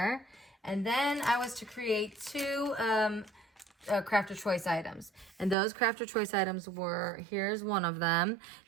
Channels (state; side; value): drops out; left; at 5.6 s